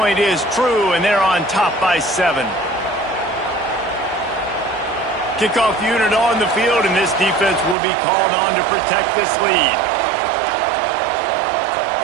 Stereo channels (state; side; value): drops out; left; at 7.8 s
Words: is true, and they're on top by 7. Kickoff unit on the field, and this defense will be called on to protect this lead.